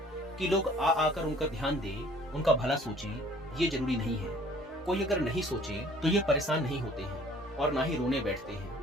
कि लोग आ आकर उनका ध्यान दे, उनका भला सोचे, ये जरूरी नहीं है। कोई अगर नहीं सोचे तो ये परेशान नहीं होते हैं और ना ही रोने बैठते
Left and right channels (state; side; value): normal; both; correlation 0.54